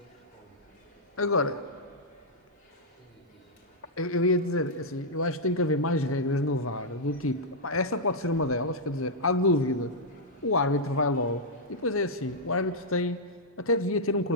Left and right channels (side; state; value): both; normal; correlation -0.07